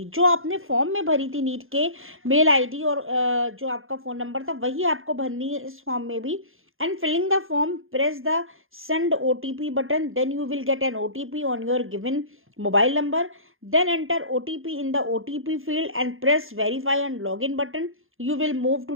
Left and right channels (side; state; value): left; late; 0.60 ms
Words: जो आपने फॉर्म में भरी थी नीट के, मेल आईडी और जो आपका फ़ोन नंबर था वही आपको भरनी है इस फॉर्म में भी। And filling the form, press the send OTP button. Then you will get an OTP on your given mobile number. Then enter OTP in the OTP field and press verify and login button. You will move